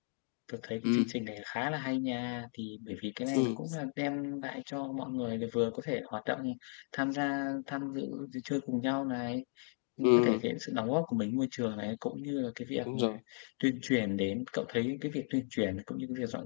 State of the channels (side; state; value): right; silent; 54 dB below the other